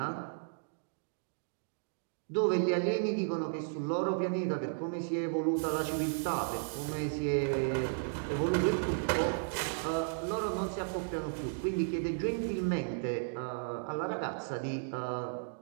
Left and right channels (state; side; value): silent; left; digital silence